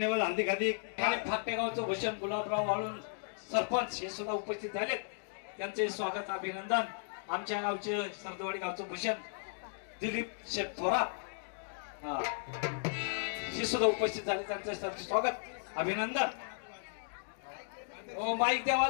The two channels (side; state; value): right; silent; digital silence